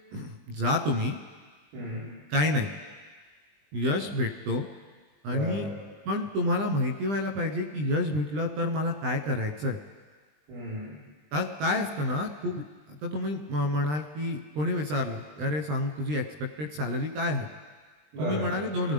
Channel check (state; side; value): late; left; 20 ms